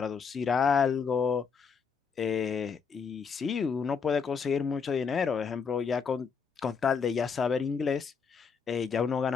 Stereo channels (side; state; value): right; quieter; 5.9 dB